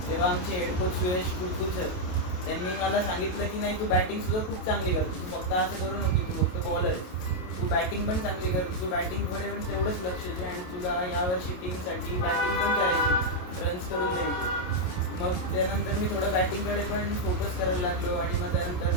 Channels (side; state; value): right; late; 28 ms